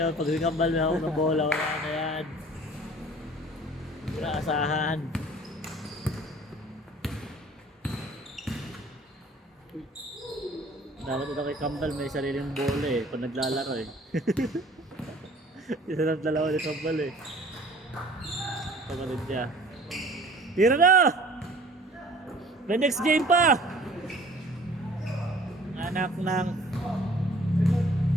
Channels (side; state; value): both; normal; correlation 0.50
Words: Pag kambal na ako ng bola, wala na yan. Wala asahan. Dapat ito kay Kambal may sariling bola eh. Pag naglalaro eh. Isa lang dalawa ni Kambal eh. Pagkalit niya. Tira na! May next game pa! Anak ng...